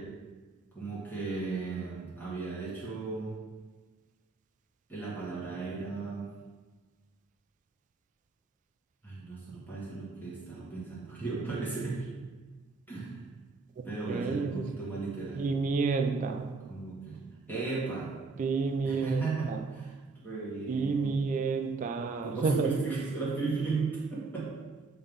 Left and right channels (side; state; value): left; quieter; 4.0 dB